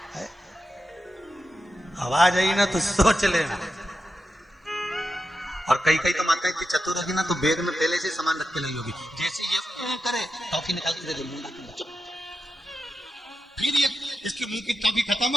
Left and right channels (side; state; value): both; normal; correlation 0.89